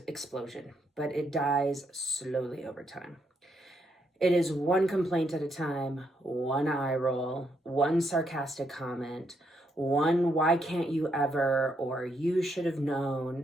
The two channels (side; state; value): both; normal; correlation 0.77